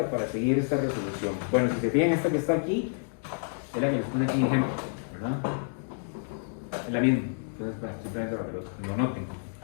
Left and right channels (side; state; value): right; silent; digital silence